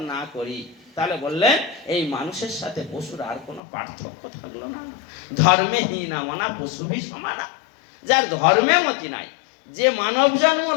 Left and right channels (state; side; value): drops out; right; at 3.6 s